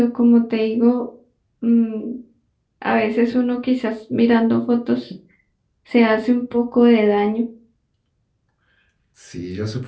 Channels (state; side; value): identical; both; correlation 1.00